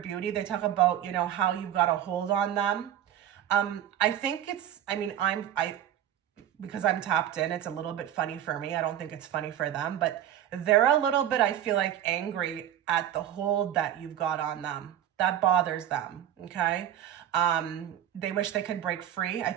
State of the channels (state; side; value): quieter; left; 11.0 dB